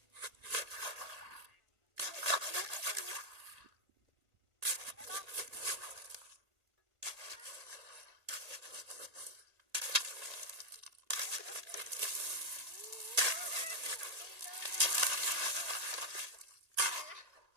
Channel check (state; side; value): late; left; 1.8 ms